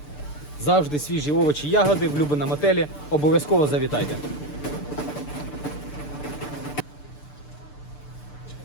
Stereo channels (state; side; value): late; right; 6.8 ms